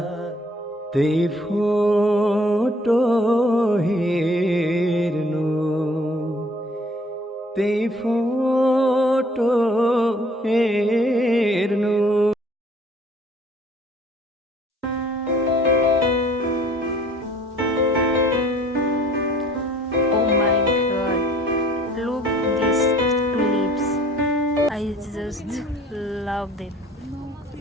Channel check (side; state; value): both; normal; correlation 0.57